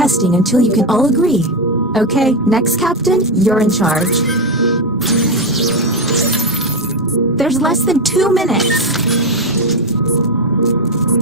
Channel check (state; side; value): normal; both; correlation 0.10